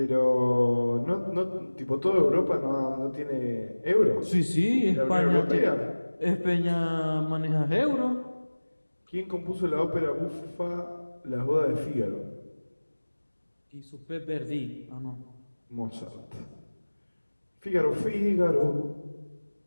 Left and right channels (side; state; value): both; inverted; correlation -1.00